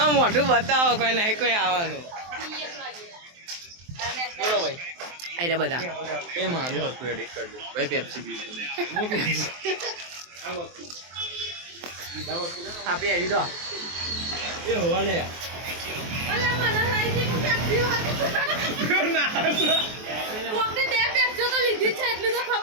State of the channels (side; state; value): left; late; 23 ms